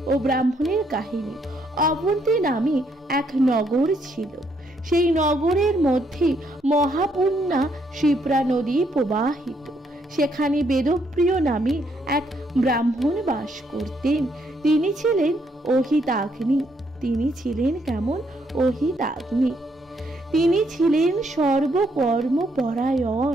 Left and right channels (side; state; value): both; normal; correlation 0.72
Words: ও ব্রাহ্মণের কাহিনী। অবন্তী নামে এক নগর ছিল। সেই নগরের মধ্যে মহাপূর্ণা শিপ্রা নদী প্রবাহিত। সেখানে বেদপ্রিয় নামে এক ব্রাহ্মণ বাস করতেন। তিনি ছিলেন অহিতাগ্নি। তিনি ছিলেন কেমন? অহিতাগ্নি। তিনি ছিলেন